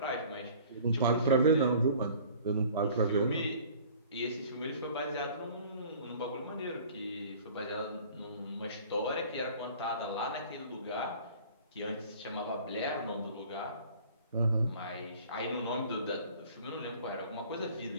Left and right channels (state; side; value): inverted; both; correlation -0.48